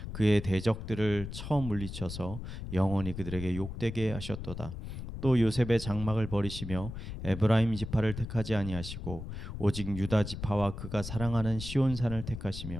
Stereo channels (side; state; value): left; noise; rumble, 8 dB below the sound